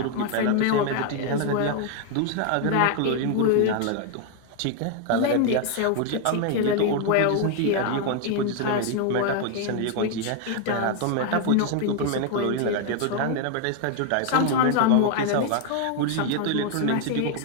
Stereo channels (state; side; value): different; both; correlation 0.01